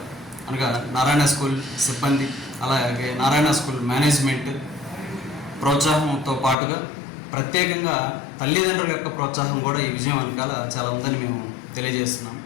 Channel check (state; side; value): drops out; right; at 6.6 s